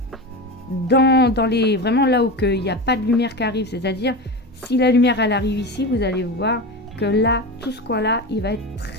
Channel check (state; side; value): normal; both; correlation 0.23